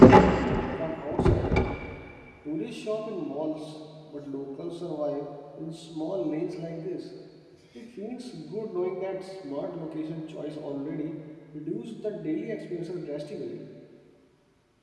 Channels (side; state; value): both; identical; correlation 1.00